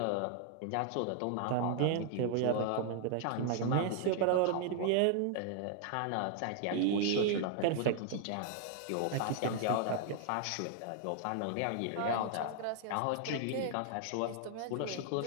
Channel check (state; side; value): different; both; correlation 0.00